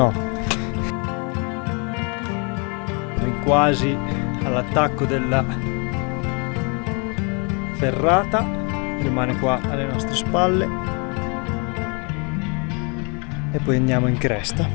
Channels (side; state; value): right; quieter; 34.4 dB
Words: Quasi all'attacco della ferrata, rimane qua alle nostre spalle e poi andiamo in cresta.